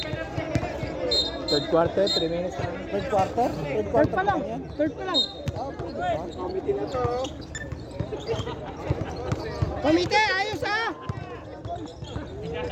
Third quarter, 3 minutes. Third quarter? Third Third quarter pa lang. yan? Third pa lang. Ah, pwede ba? Committee na to. Komite, ayos ah!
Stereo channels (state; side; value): identical; both; correlation 1.00